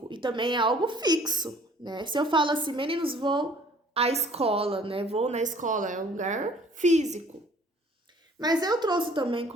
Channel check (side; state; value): both; normal; correlation 0.55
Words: e também é algo fixo, né? Se eu falo assim, meninos, vou à escola, né? Vou na escola, é um lugar físico. Mas eu trouxe também